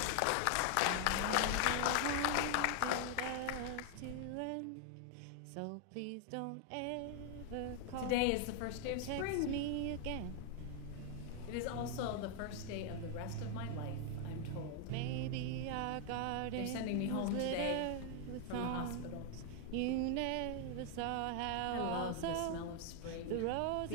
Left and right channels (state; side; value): different; both; correlation 0.00